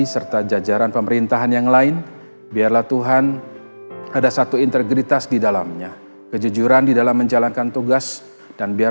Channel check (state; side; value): inverted; both; correlation -1.00